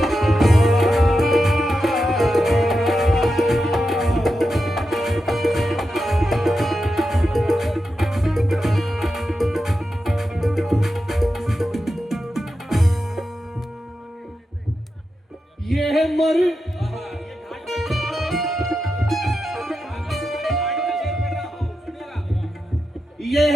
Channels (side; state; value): both; normal; correlation 0.89